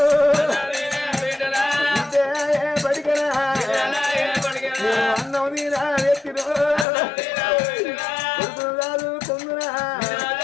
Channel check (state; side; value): drops out; right; at 6.9 s